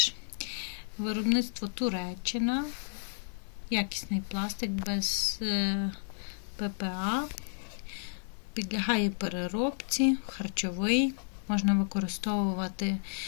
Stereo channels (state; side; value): silent; right; 56 dB below the other